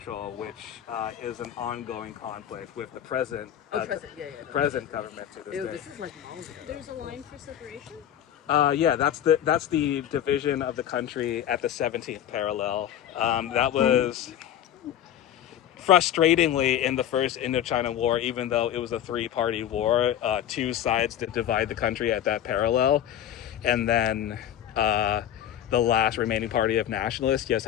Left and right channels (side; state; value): right; quieter; 10.7 dB